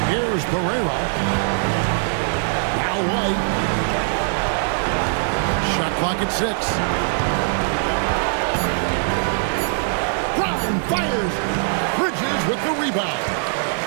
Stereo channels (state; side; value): silent; left; digital silence